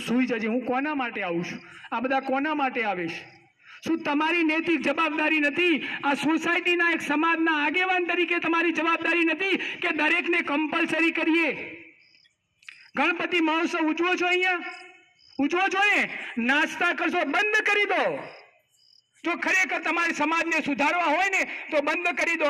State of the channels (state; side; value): identical; both; correlation 1.00